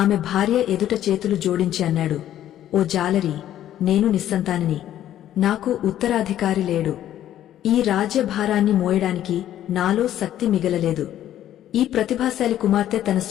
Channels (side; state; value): right; quieter; 11.9 dB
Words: ఆమె భార్య ఎదుట చేతులు జోడించి అన్నాడు, ఓ జాలరి, నేను నిస్సంతానిని. నాకు ఉత్తరాధికారి లేడు. ఈ రాజ్యభారాన్ని మోయడానికి నాలో శక్తి మిగలలేదు. ఈ ప్రతిభాశాలి కుమార్తె తన